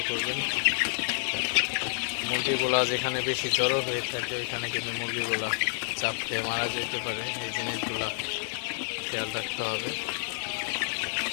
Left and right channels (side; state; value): right; silent; 58 dB below the other